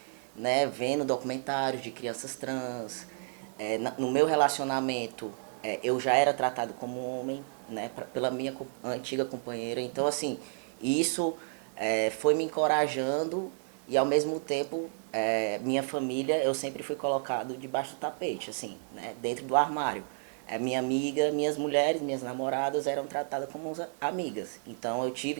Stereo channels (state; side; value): silent; left; 57 dB below the other